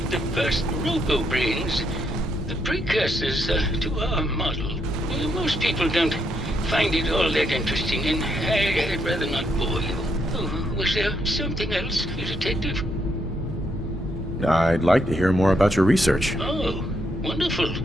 the first robo-brains, the precursors to our model. Most people don't find it all that interesting, and I'd rather not bore you. Oh, was there something else, Detective? I'd like to hear more about your research. Oh, wonderful.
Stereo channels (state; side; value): normal; both; correlation 0.76